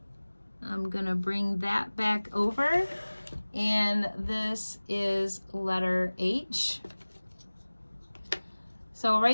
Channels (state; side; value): inverted; both; correlation -1.00